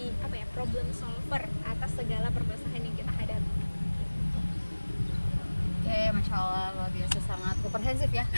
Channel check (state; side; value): inverted; both; correlation -1.00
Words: apa ya, problem solver atas segala permasalahan yang kita hadapi. Oke, Masya Allah, luar biasa, sangat komprehensif ya